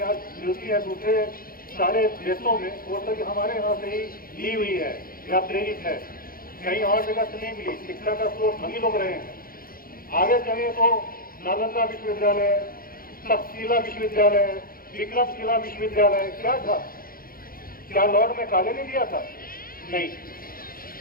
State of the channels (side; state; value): right; late; 0.42 ms